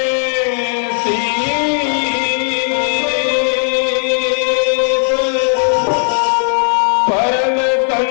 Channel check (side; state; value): right; silent; digital silence